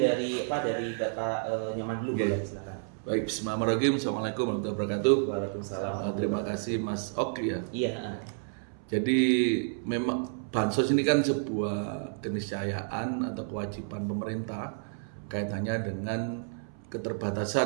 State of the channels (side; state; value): left; silent; 58 dB below the other